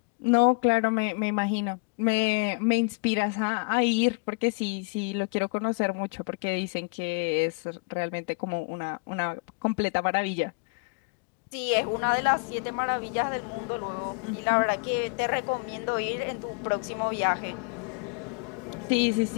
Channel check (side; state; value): right; quieter; 31.8 dB